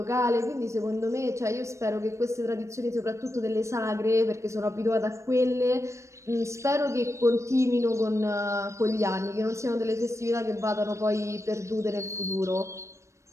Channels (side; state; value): left; late; 0.14 ms